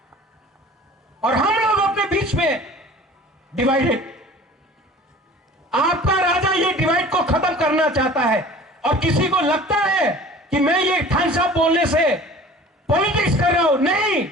और हम लोग अपने बीच में डिवाइडेड। आपका राजा ये डिवाइड को खत्म करना चाहता है, और किसी को लगता है कि मैं ये थानसा बोलने से पॉलिटिक्स कर रहा हूं। नहीं,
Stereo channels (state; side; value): normal; both; correlation 0.44